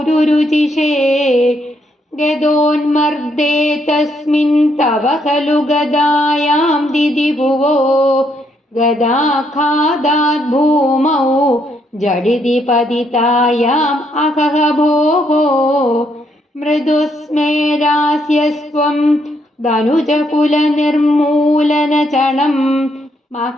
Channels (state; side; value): normal; both; correlation 0.74